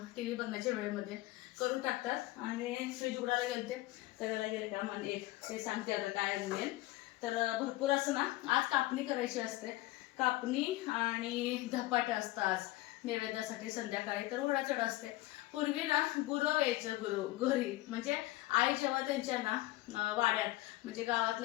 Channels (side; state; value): right; quieter; 18.1 dB